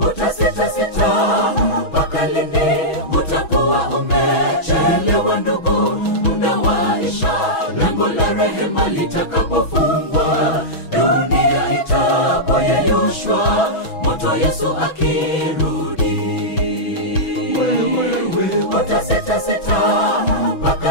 mpaka lini? Utakuwa umechelewa ndugu, muda waisha, lango la rehema litakapofungwa, dunia itapoyeyushwa, moto Yesu akirudi. Utasita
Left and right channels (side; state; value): right; late; 6.2 ms